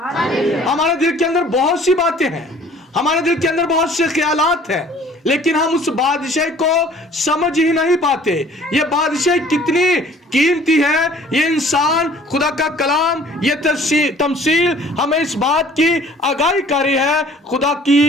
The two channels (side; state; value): both; normal; correlation 0.53